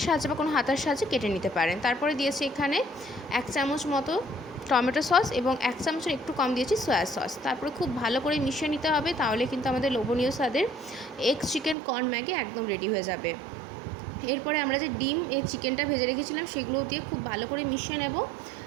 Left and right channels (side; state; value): left; drops out; at 11.8 s